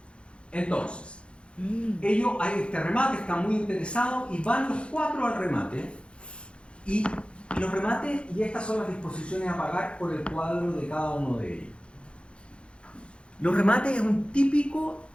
entonces, ellos hay este remate, están muy interesados y van los 4 al remate y los remates, y estas son las disposiciones a pagar por el cuadro de cada uno de ellos. Los remates es un típico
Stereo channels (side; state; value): right; late; 0.058 ms